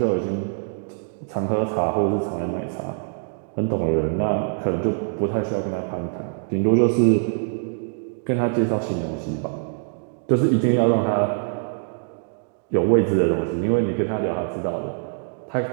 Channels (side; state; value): left; silent; digital silence